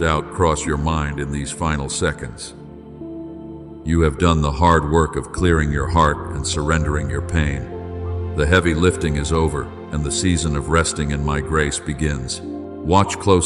cross your mind in these final seconds. You have done the hard work of clearing your heart and surrendering your pain. The heavy lifting is over, and the season of resting in my grace begins. Watch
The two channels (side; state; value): both; identical; correlation 1.00